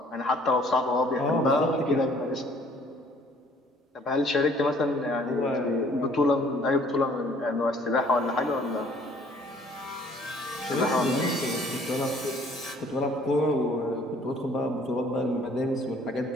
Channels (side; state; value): both; normal; correlation 0.58